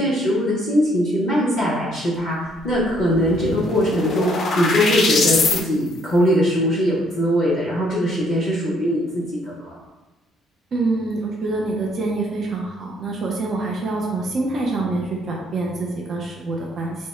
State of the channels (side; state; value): both; normal; correlation 0.67